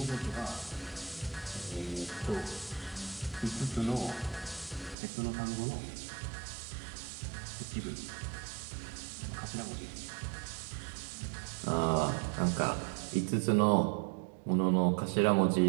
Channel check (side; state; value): left; drops out; at 5.0 s